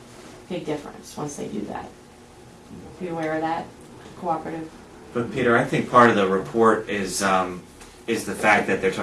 big difference once they do that. Are you aware of that? Cooperative. But Peter, I think part of the report is the fact that they're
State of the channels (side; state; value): both; identical; correlation 1.00